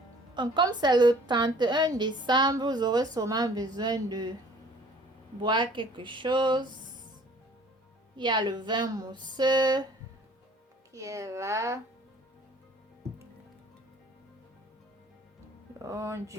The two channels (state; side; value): normal; both; correlation 0.53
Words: comme c'est le 31 décembre, vous aurez sûrement besoin de boire quelque chose. Il y a le vin mousseux qui est là. Donc,